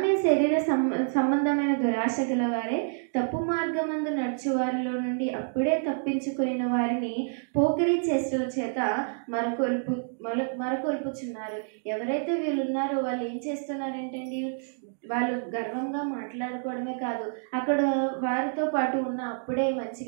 శరీర సంబంధమైన దురాశ గలవారే తప్పు మార్గమందు నడుచు వారిలో నుండి అప్పుడే తప్పించుకున్న వారిని పోకిరీ చేష్టల చేత మరకొల్పుచున్నారు. ఎవరైతే వీళ్ళు ఉన్నారో వాళ్ళు ఏం చేస్తున్నారంటండి, వాళ్ళు గర్వంగా మాట్లాడుకోవడమే కాదు, అక్కడ వారితో పాటు ఉన్న అప్పుడే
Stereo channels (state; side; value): silent; left; digital silence